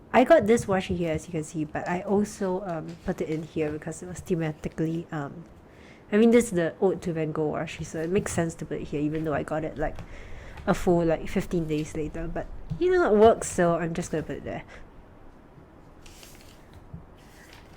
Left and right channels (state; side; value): identical; both; correlation 1.00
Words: I got this washi here, as you can see, but I also put it in here because it was thematically I mean, this is the Ode to Van Gogh washi, so it makes sense to put it here, even though I got it like a full 15 days later. But it works, so I'm just gonna put it there.